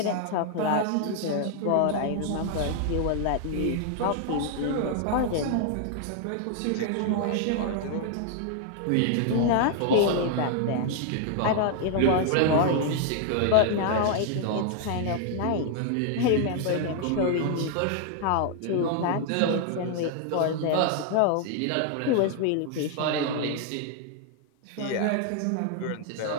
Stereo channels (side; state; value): both; different; correlation 0.00